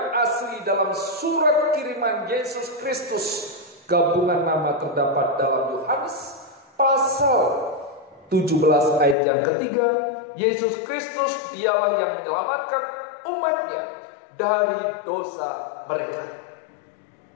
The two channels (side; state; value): right; drops out; at 9.2 s